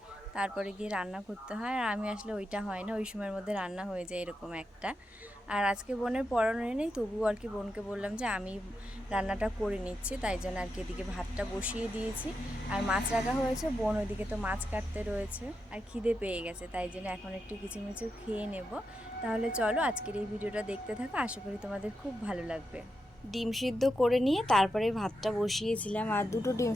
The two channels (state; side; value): normal; both; correlation 0.86